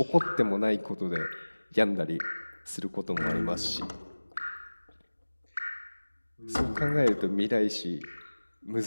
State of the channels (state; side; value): inverted; both; correlation -1.00